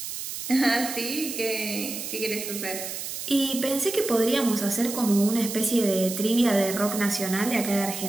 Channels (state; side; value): noise; right; hiss, 7 dB below the sound